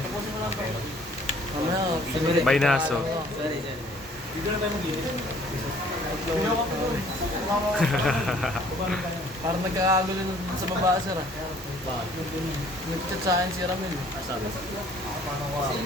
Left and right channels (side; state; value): both; normal; correlation 0.57